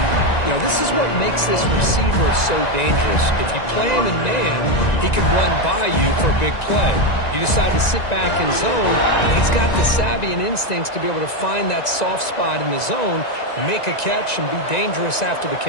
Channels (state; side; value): late; right; 1.9 ms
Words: You know, this is what makes this receiver so dangerous. If you play him in man, he can run by you for a big play. You decide to sit back in zone, he's got the savvy and instincts to be able to find that soft spot in the zone, make a catch, and be dangerous after the